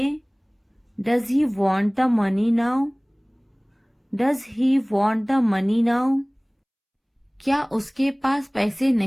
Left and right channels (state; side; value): identical; both; correlation 1.00